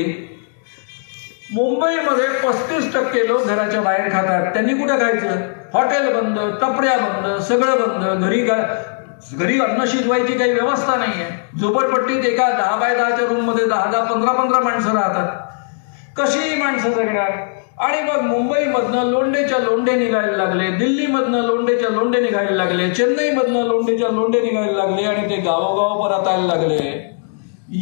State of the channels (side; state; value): right; silent; digital silence